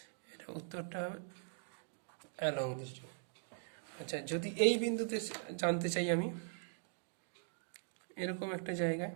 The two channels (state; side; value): silent; left; digital silence